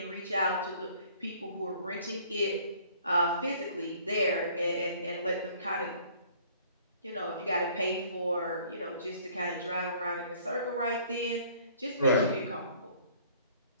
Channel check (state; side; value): inverted; both; correlation -0.56